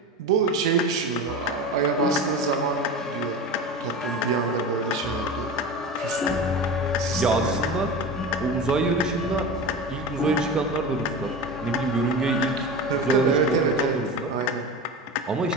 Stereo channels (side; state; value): both; normal; correlation 0.28